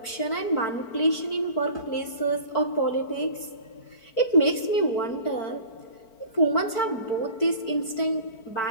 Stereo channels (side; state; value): right; late; 4.5 ms